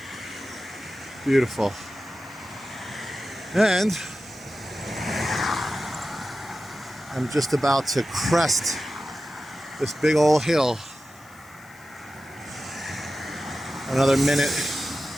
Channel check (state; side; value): noise; left; hiss, 26 dB below the sound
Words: Beautiful. And I'm just about to crest this big old hill. Another minute.